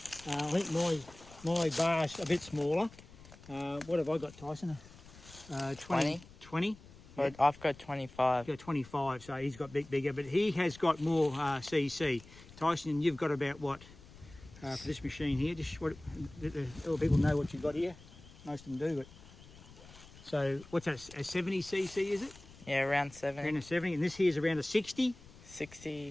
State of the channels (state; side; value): noise; left; rumble, 20 dB below the sound